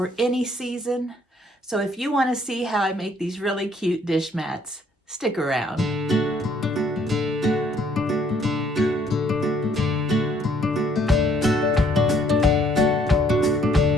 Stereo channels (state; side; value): normal; both; correlation 0.65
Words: any season. So if you want to see how I make these really cute dish mats, stick around.